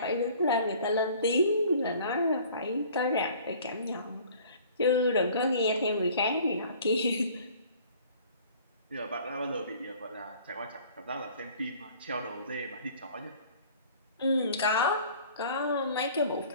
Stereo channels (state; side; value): inverted; both; correlation -0.51